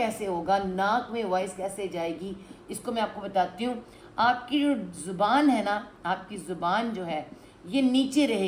ہوگا؟ ناک میں وائس کیسے جائے گی؟ اس کو میں آپ کو بتاتی ہوں۔ آپ کی جو زبان ہے نا، آپ کی زبان جو ہے یہ نیچے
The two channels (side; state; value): both; identical; correlation 1.00